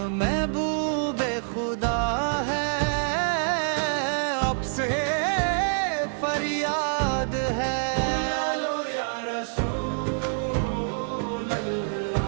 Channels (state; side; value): silent; left; digital silence